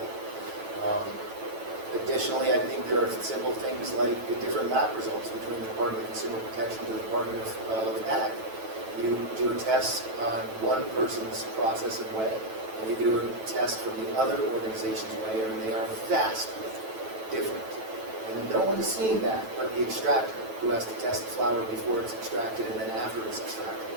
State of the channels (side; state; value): left; late; 9.1 ms